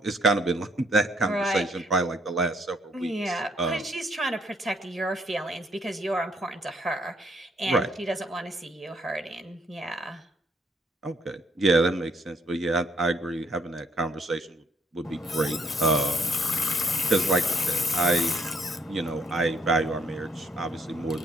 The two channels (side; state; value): both; normal; correlation 0.68